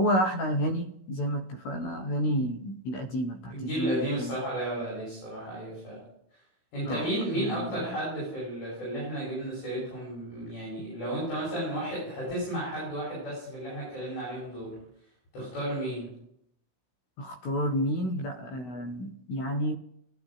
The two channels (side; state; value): right; late; 16 ms